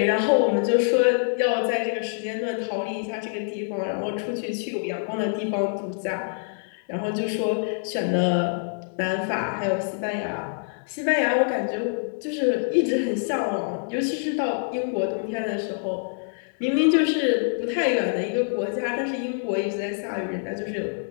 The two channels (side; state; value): right; silent; 61 dB below the other